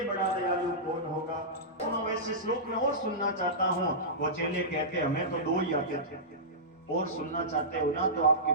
बड़ा दयालु कौन होगा। तो मैं वैसे श्लोक में और सुनना चाहता हूँ। वो चेले कहते हमें तो 2 ही आते थे, और सुनना चाहते हो ना तो आपके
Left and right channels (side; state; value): both; normal; correlation -0.16